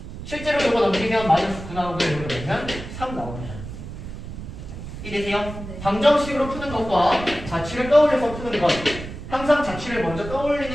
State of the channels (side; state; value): right; noise; rumble, 10 dB below the sound